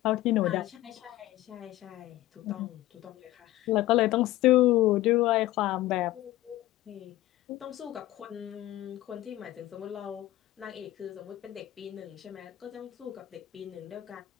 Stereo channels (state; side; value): quieter; right; 15.8 dB